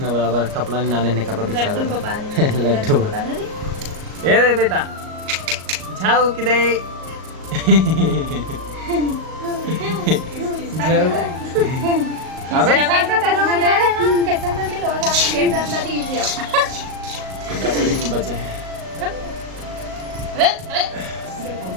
बराबर कपड़ा नहीं नाने ने कपड़ा बिछा था लड्डू ये रे बेटा जाओ किधे जाओ अबे बचे हैं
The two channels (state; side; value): late; left; 38 ms